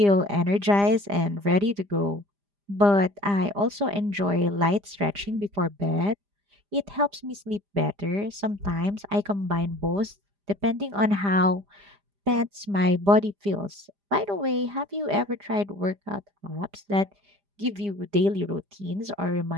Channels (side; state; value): left; late; 5.0 ms